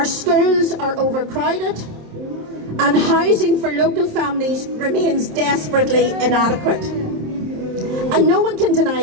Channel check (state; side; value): late; left; 27 ms